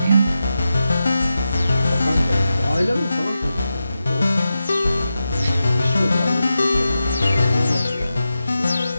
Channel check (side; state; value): both; inverted; correlation -0.90